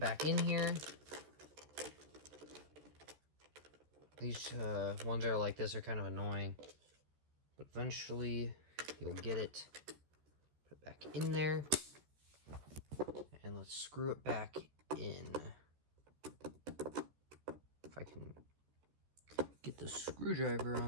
in here. These ones that are like this are kind of annoying. But eventually, you'll get it. Put it back in there. And let's screw it back in. If I can get the screwdriver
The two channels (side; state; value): left; late; 13 ms